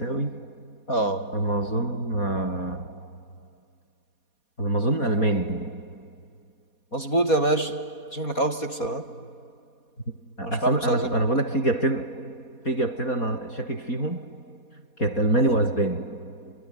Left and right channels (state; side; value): late; right; 4.2 ms